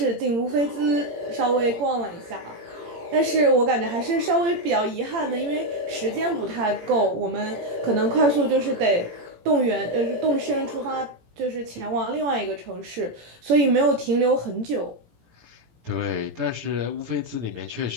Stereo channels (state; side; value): late; left; 18 ms